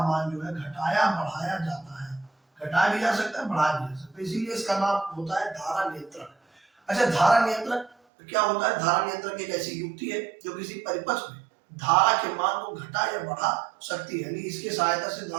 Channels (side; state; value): left; drops out; at 8.0 s